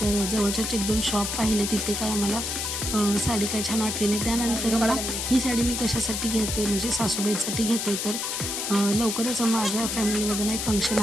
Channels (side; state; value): left; noise; hiss, 2 dB below the sound